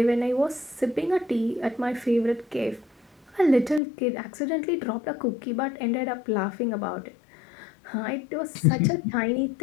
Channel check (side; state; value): right; drops out; at 3.8 s